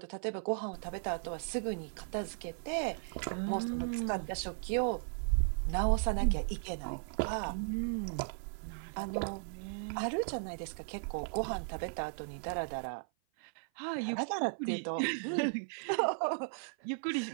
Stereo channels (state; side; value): silent; left; 54 dB below the other